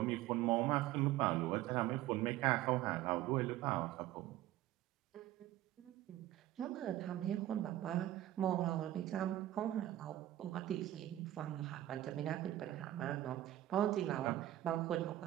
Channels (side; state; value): left; quieter; 14.1 dB